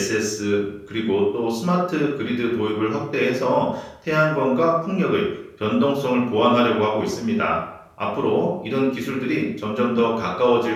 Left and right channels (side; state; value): both; identical; correlation 1.00